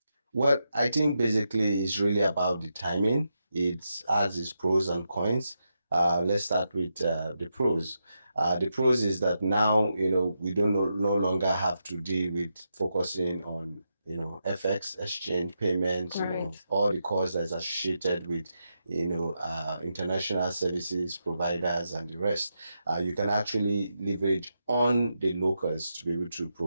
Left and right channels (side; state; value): both; inverted; correlation -0.85